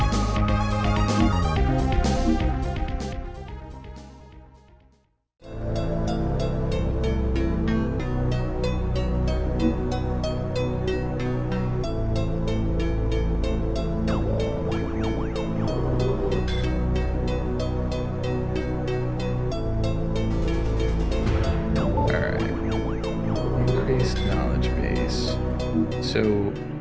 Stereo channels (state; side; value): identical; both; correlation 1.00